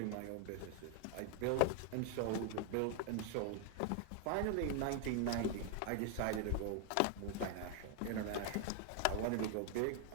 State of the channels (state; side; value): different; both; correlation 0.00